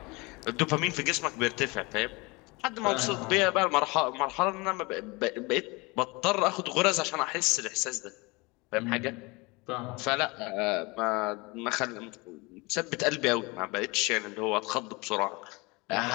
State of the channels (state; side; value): quieter; right; 25.7 dB